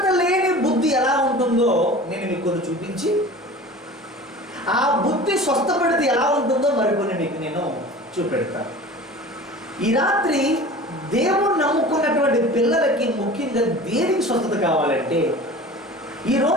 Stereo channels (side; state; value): both; normal; correlation 0.39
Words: లేని బుద్ధి ఎలా ఉంటుందో నేను మీకు కొన్ని చూపించి ఆ బుద్ధి స్వస్థపడితే ఎలా ఉంటుందో మరికొన్ని మీకు నేను చూపెడతాను. ఈ రాత్రి దేవుడు నమ్ముకున్నటువంటి పిల్లలకి ముఖ్యంగా దేనికి స్వస్థత కావాలంటే ఈ